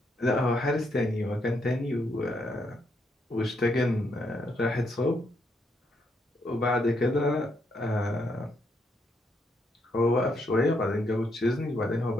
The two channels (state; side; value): normal; both; correlation 0.76